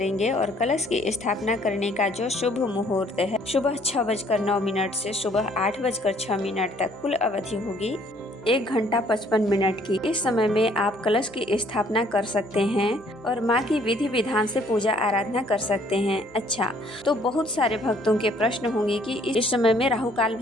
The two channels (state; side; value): noise; right; hum, 26 dB below the sound